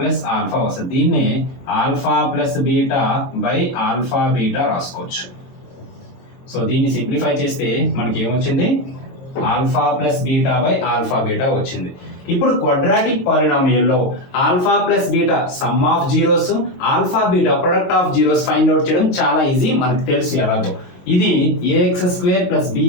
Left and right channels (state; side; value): late; right; 22 ms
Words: ఆల్ఫా వస్తుంది. దీన్నే alpha plus beta by alpha beta రాసుకోవచ్చు. సో దీన్ని సింప్లిఫై చేస్తే మనకి ఏమొచ్చింది? Alpha plus beta by alpha beta వచ్చింది. ఇప్పుడు క్వాడ్రాటిక్ పాలినామియల్లో alpha plus beta sum of zeros, alpha beta product of zeros find out చేయడం చాలా ఈజీ, మనకు తెలుసు ఎలాగో. ఇది ax² +